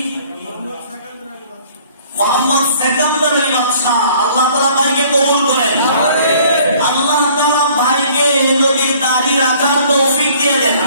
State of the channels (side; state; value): both; inverted; correlation -0.55